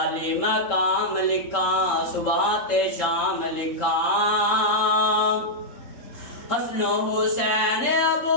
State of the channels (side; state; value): right; late; 3.7 ms